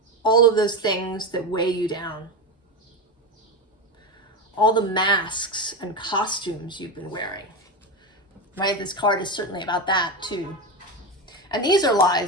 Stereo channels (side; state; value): both; normal; correlation 0.16